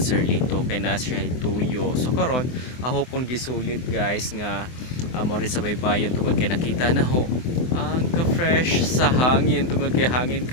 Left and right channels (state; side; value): late; right; 24 ms